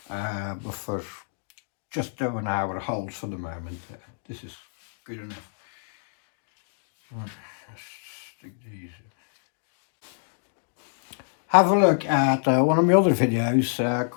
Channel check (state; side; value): silent; right; digital silence